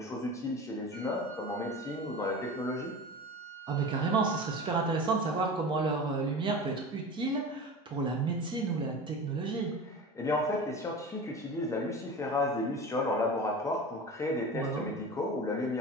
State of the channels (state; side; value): normal; both; correlation 0.33